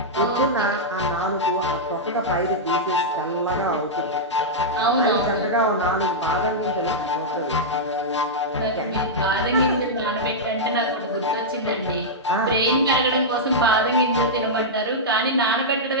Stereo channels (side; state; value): both; normal; correlation -0.09